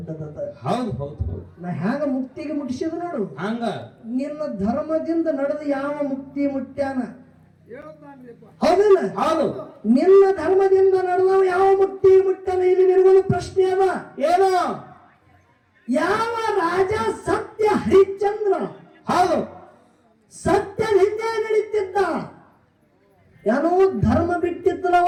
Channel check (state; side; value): identical; both; correlation 1.00